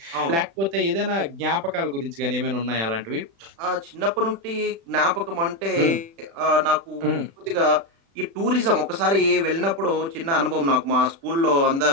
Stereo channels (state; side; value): late; left; 36 ms